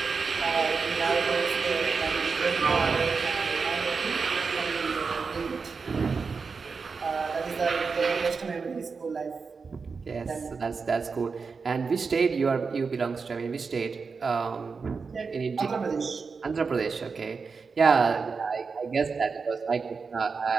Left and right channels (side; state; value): left; quieter; 5.0 dB